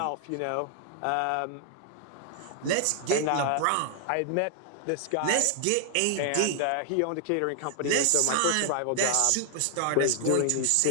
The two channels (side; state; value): both; different; correlation 0.00